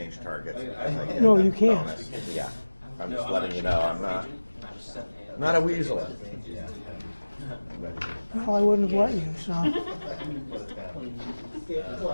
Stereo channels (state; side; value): inverted; both; correlation -1.00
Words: targets. as I get No, that you can't. bonus. Yeah, I'm just letting you know. I'm not a weasel. well, I wouldn't have let you, so. Yeah,